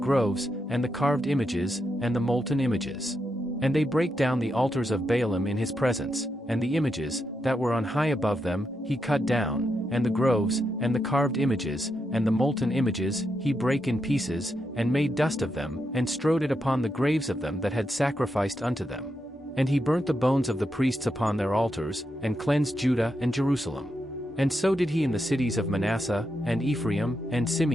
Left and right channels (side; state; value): both; normal; correlation 0.84